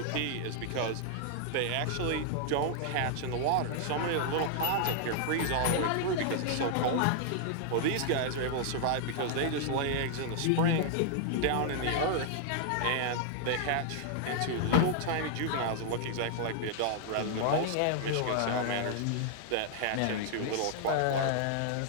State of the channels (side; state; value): both; different; correlation -0.01